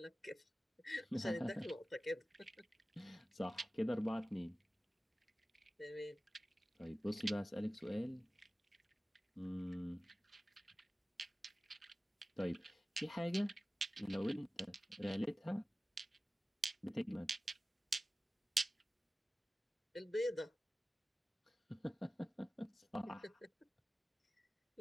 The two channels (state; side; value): normal; both; correlation 0.96